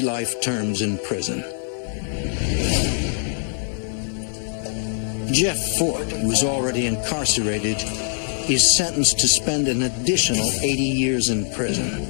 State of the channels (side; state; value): right; silent; digital silence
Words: life terms in prison. Jeff Fort, who is already incarcerated, is sentenced to spend an additional 80 years in prison.